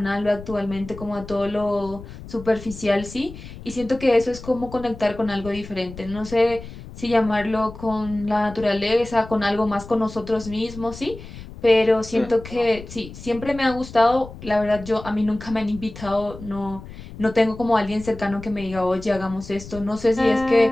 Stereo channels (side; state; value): left; noise; rumble, 14 dB below the sound